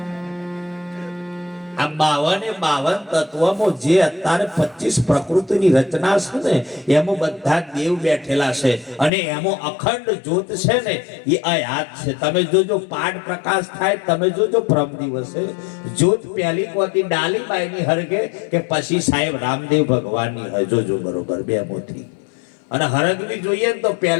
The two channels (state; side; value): drops out; right; at 9.1 s